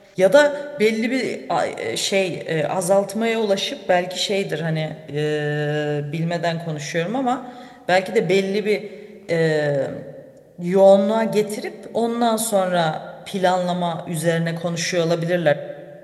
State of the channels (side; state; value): both; identical; correlation 1.00